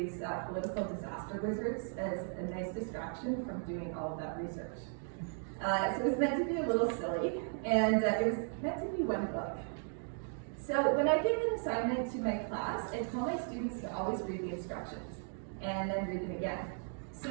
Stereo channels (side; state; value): left; silent; 54 dB below the other